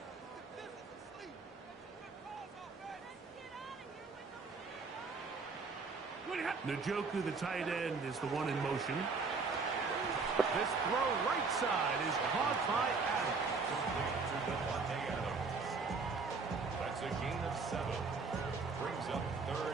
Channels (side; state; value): left; quieter; 4.4 dB